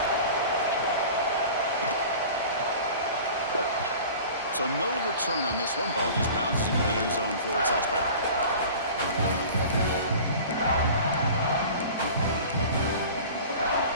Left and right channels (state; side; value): inverted; both; correlation -0.41